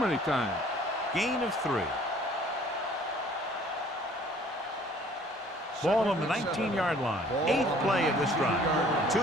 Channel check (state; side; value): normal; both; correlation 0.55